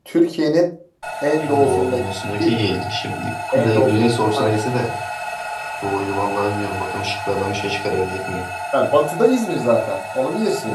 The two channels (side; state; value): both; identical; correlation 1.00